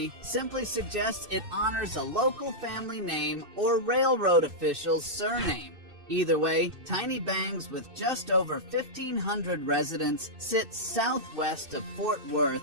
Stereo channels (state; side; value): late; left; 2.6 ms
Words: simply suggests it honors a local family name or railroad official's surname. Either way, Tiny Bangs, with just over 1,500 residents, sits southwest of Fort Worth